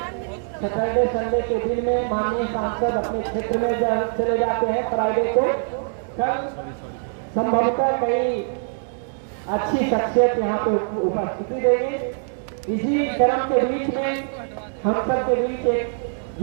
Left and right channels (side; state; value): left; silent; digital silence